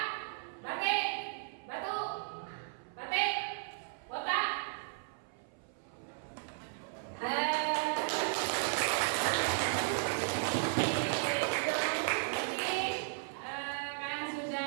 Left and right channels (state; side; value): silent; left; 54 dB below the other